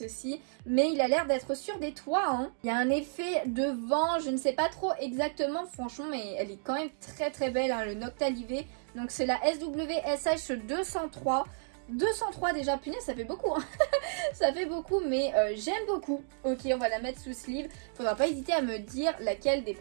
Mais il a l'air d'être sur des toits, hein. Il y a un effet de vent, je ne sais pas trop exactement, franchement, mais elle est quand même très très belle, hein, le Noctali V. Donc c'est la SWSH 203. 203 déjà, punaise, ça fait beaucoup, hein. Ça fait beaucoup, mais j'aime beaucoup. Ok, on va la mettre sous sleeve. Faudra pas hésiter à me dire laquelle des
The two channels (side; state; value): left; silent; digital silence